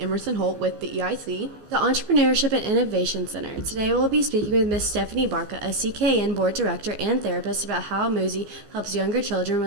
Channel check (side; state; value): left; late; 15 ms